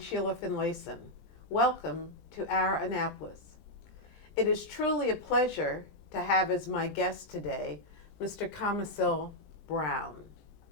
Sheila Finlayson. Welcome to our Annapolis. It is truly a pleasure to have as my guest today Mr. Kamisil Brown.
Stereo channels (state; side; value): late; right; 20 ms